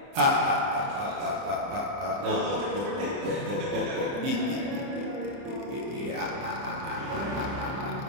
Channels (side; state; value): left; late; 30 ms